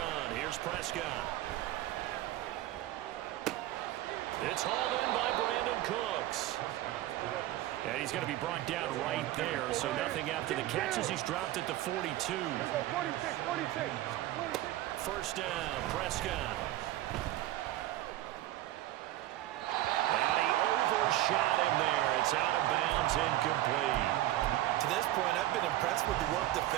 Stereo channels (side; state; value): left; quieter; 14.9 dB